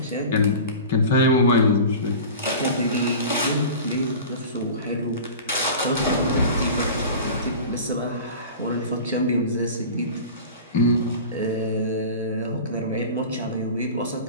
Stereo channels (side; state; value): both; inverted; correlation -0.35